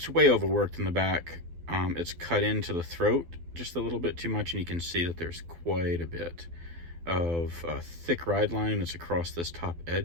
overworked in the back. It's cut into the throat just a little bit too much, and you can see that there's quite a bit of a thick ride line that's across this top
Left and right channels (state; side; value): late; left; 12 ms